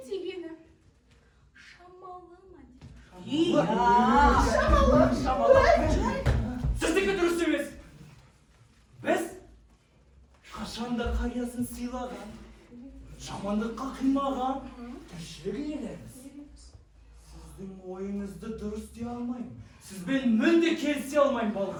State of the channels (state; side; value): identical; both; correlation 1.00